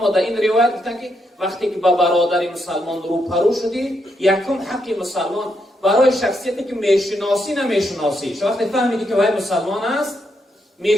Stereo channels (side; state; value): both; normal; correlation 0.79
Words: در این روایت گفتن که وقتی که با برادر مسلمان روبرو شدی، یکم حق مسلمان برای شخصیتی که میشناسی نمیشناسی، وقتی فهمیدی که وای مسلمان است،